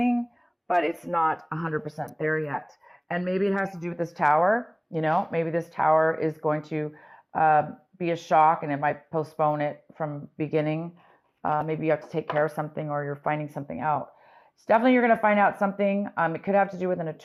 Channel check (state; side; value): identical; both; correlation 1.00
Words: but it's not 100% there yet. And maybe it has to do with this tower. Maybe this tower is going to be a shock and it might postpone it from beginning. Maybe you have to take care of something or you're finding something out. It's definitely you're going to find out something. It could have to do with an